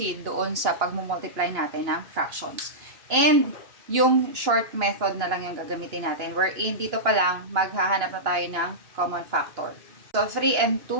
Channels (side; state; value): left; late; 2.9 ms